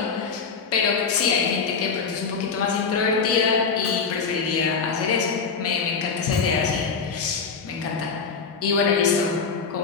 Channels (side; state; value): right; quieter; 5.4 dB